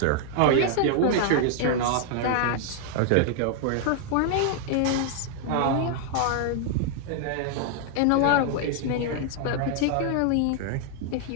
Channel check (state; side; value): different; both; correlation 0.00